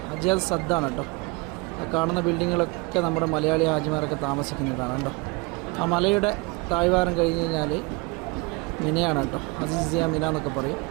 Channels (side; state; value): left; quieter; 27.6 dB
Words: ഹജ്ജാദ് സദ്ദാണ് കേട്ടോ. കാണുന്ന ബിൽഡിങ്ങുകളൊക്കെ നമ്മുടെ മലയാളി ഹാജിമാരൊക്കെ താമസിക്കുന്നതാണ് കേട്ടോ. ആ മലയുടെ താഴ്വാരം കഴിഞ്ഞ് കഴിഞ്ഞാൽ മിനയാണ് കേട്ടോ. അസീസിയ മിന എന്നൊക്കെ പറയും.